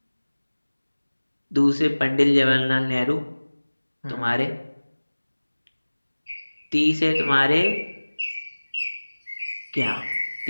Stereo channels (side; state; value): both; inverted; correlation -1.00